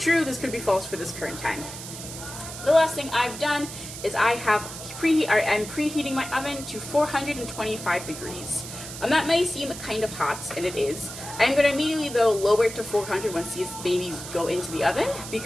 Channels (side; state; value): right; noise; hiss, 11 dB below the sound